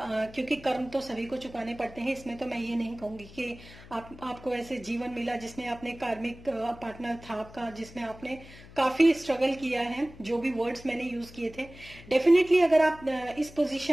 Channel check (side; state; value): left; noise; hum, 19 dB below the sound